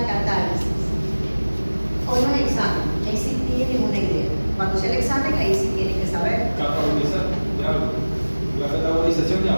catálisis? Hoy no es examen, ahí sí tienen una idea. Cuando sea el examen, ahí sí tienen que saber. Catabolizar de algo. La catabolización de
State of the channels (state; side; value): inverted; both; correlation -1.00